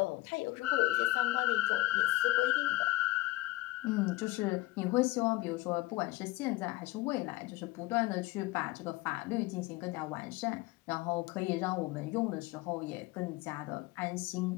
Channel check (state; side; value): quieter; right; 18.7 dB